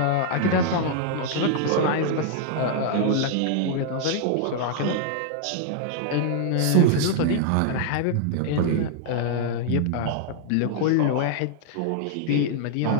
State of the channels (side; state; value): both; different; correlation -0.01